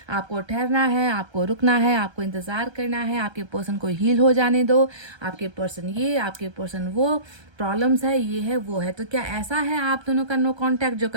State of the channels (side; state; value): left; late; 1.3 ms